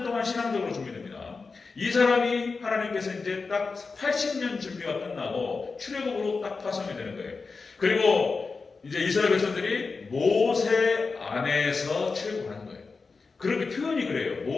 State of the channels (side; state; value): right; quieter; 4.4 dB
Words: 동안 신앙적으로 준비됩니다. 이 사람이 하나님께서 이제 딱 80년 준비가 끝나고 출애굽으로 딱 파송이 되는 거예요. 그리고 이제 이스라엘 백성들이 모세 안에서 출애굽하는 거예요. 그렇게 표현이 그래요.